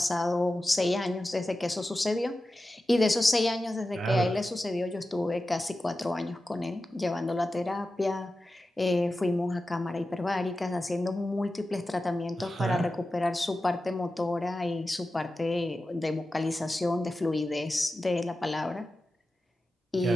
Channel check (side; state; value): both; normal; correlation 0.93